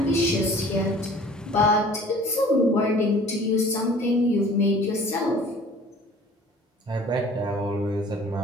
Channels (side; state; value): both; normal; correlation 0.49